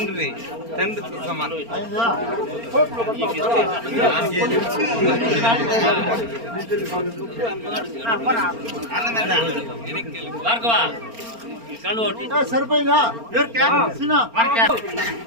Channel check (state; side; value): late; left; 4.4 ms